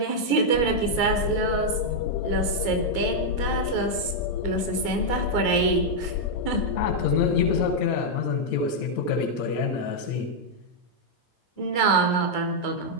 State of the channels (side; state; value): right; late; 8.4 ms